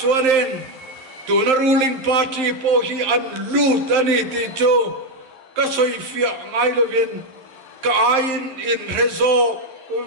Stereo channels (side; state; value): left; late; 11 ms